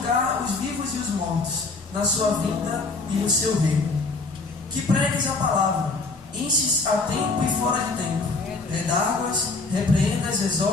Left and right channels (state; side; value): quieter; right; 3.7 dB